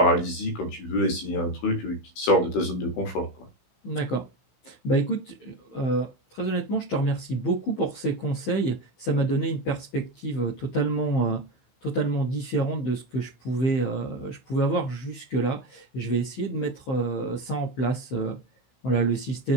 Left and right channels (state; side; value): late; right; 16 ms